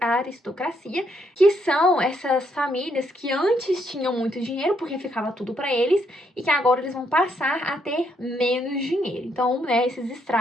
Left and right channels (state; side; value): normal; both; correlation 0.74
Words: aristocracia, que são essas famílias que antes tinham muito dinheiro, porque ficava tudo para eles, e que agora eles vão passar a ter menos dinheiro. Então, né, esses